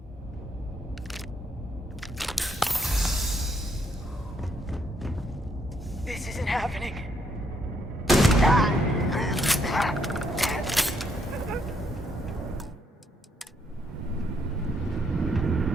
This isn't happening.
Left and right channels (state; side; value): normal; both; correlation 0.73